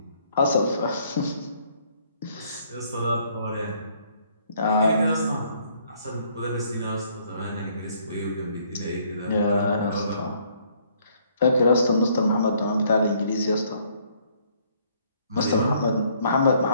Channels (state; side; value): inverted; both; correlation -0.65